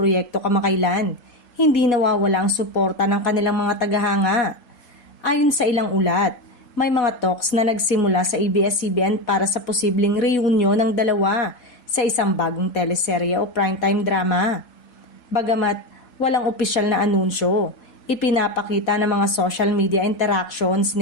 kamakailan, hindi nawawala ang suporta ng kanilang mga tagahanga. Ayon sa ilang ulat, may mga talks na nagsimula sa ABS-CBN para sa posibleng reunion ng dalawa sa isang bagong teleserye o primetime drama. Bagamat walang opisyal na anunsyo, ipinapakita ng mga social media interactions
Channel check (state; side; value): late; right; 4.1 ms